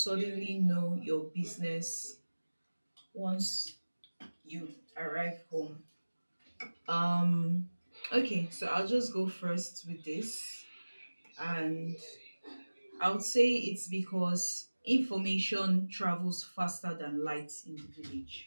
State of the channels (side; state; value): both; inverted; correlation -1.00